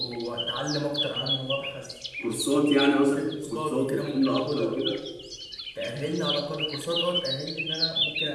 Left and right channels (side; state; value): both; identical; correlation 1.00